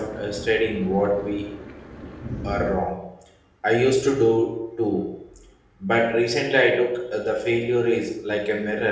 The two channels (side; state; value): both; identical; correlation 1.00